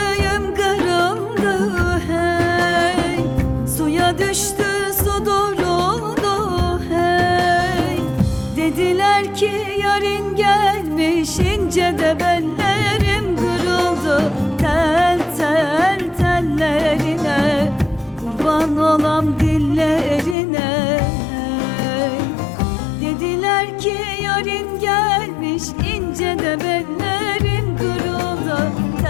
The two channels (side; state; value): right; drops out; at 20.4 s